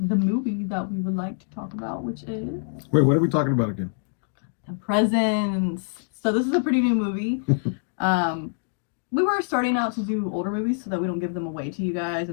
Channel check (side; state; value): right; silent; digital silence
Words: the movie that we would like to talk about, which is... Wait, what are we talking about again? The Presents. So this is a pretty new movie. We were starting out to do older movies so that we don't give them away to you guys